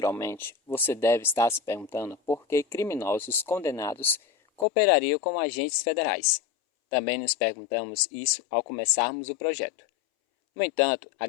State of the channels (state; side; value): drops out; right; at 4.7 s